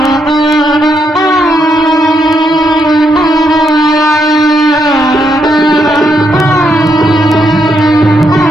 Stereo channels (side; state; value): both; normal; correlation 0.78